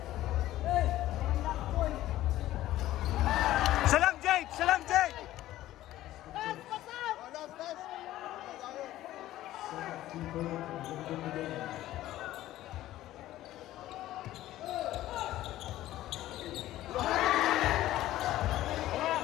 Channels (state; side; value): quieter; right; 14.6 dB